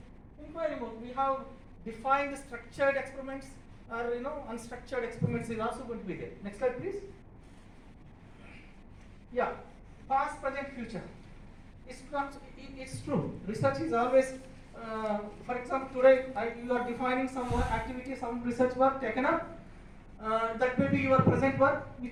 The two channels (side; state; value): both; identical; correlation 1.00